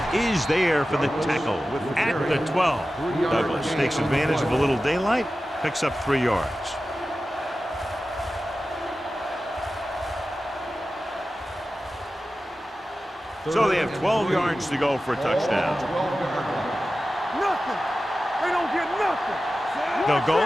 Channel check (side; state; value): both; normal; correlation 0.94